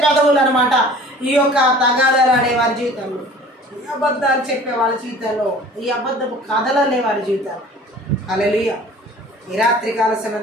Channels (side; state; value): both; normal; correlation 0.47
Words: పెదవులు అనమాట ఈ యొక్క తగాదాలు ఆడే వారి జీవితంలో, ఈ అబద్ధాలు చెప్పే వాళ్ళ జీవితాల్లో, ఈ అబద్ధపు కథలనే వారి జీవితాలు. హల్లెలూయా. ఈ రాత్రి కాల సమయం